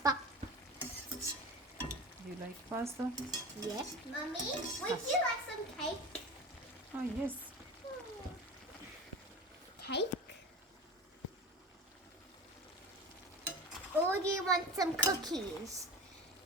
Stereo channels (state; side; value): normal; both; correlation 0.31